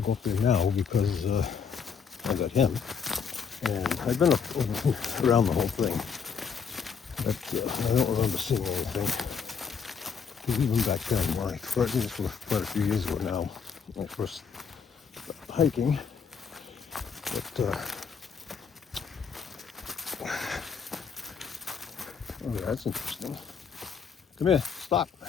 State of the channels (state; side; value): quieter; right; 6.3 dB